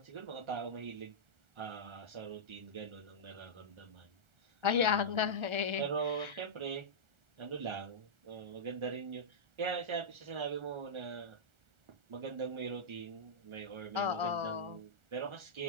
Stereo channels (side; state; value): left; late; 1.4 ms